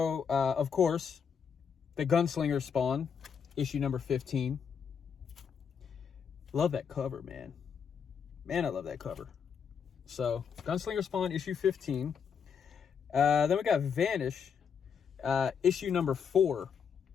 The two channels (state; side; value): quieter; right; 6.9 dB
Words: of course, the Gunslinger Spawn, issue number 15. Love that cover, man. Man, I love that cover. So, Gunslinger Spawn, issue 15. Then we got Vanish, issue number 4.